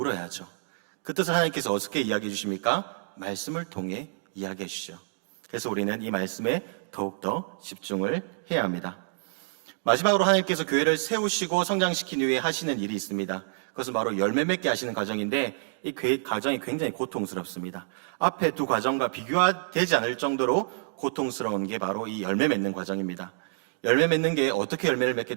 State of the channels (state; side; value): silent; left; digital silence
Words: 그 뜻을 하나님께서 어떻게 이야기해 주십니까? 말씀을 통해 이야기해 주시죠. 그래서 우리는 이 말씀에 더욱더 집중을 해야 합니다. 마지막으로 하나님께서 교회를 세우시고 성장시킨 후에 하시는 일이 있습니다. 그것은 바로 열매 맺게 하시는 과정인데, 이 과정이 굉장히 고통스럽습니다. 앞에 두 과정과 비교되지 않을 정도로 고통스러운 게 바로 이 열매 맺는 과정입니다. 열매 맺는 게 어떻게 열매를 맺게